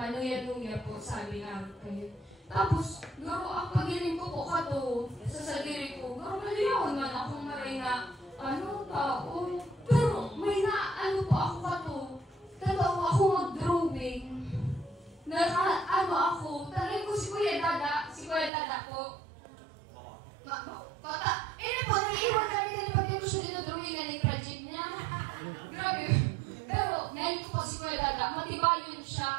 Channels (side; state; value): left; drops out; at 18.5 s